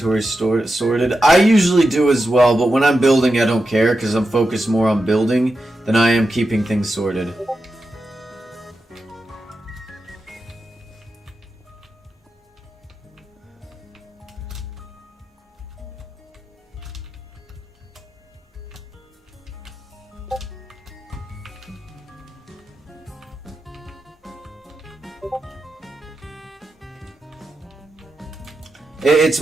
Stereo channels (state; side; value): normal; both; correlation 0.89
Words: sorted. I usually do as well, but when I'm building, I don't care because I'm focused more on building than I am keeping things sorted. It's